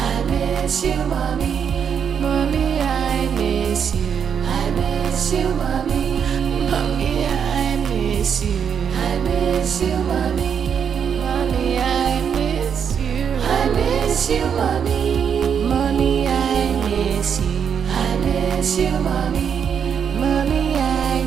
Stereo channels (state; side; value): quieter; left; 7.5 dB